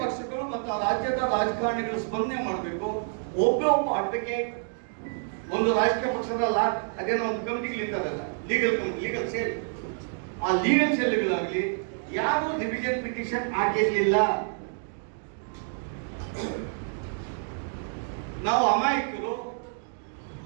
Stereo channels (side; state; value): left; silent; digital silence